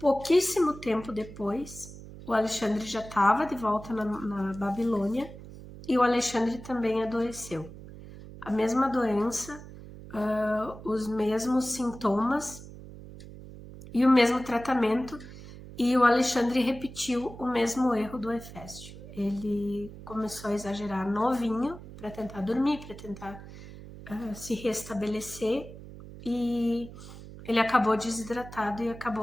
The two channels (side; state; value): right; noise; hum, 15 dB below the sound